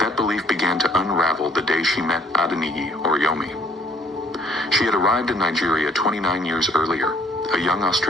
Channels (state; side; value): normal; both; correlation 0.60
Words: That belief began to unravel the day she met Adeniyi Oriyomi. She had arrived in Nigeria 29 years earlier, a young